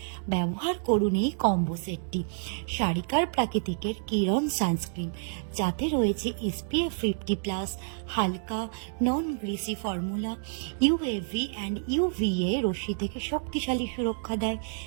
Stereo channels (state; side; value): silent; left; digital silence